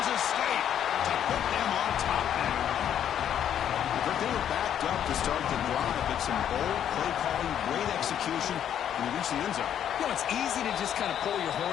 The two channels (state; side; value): quieter; right; 9.8 dB